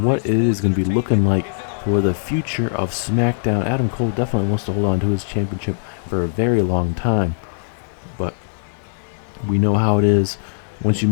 what it is going to be looking like for the future of SmackDown. Adam Cole definitely wants to hold on to his championship for a very long time. But we know how it is. Once you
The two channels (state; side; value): silent; right; digital silence